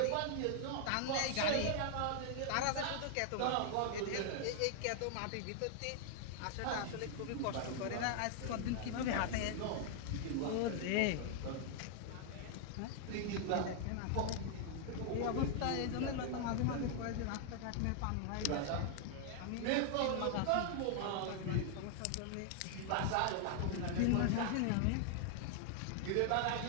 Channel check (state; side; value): different; both; correlation 0.00